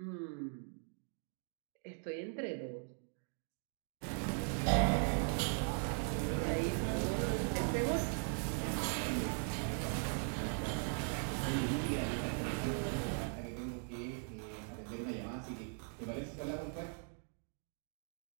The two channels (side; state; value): left; silent; 51 dB below the other